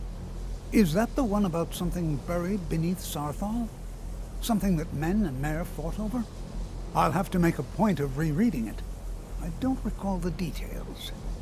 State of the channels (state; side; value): identical; both; correlation 1.00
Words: Is that the one about something buried beneath Sarthal? Something that men and Mare fought over? I'll have to make a point of rereading it. I don't recall the details.